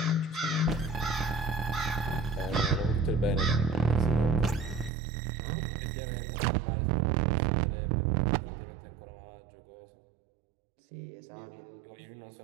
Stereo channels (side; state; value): left; drops out; at 4.9 s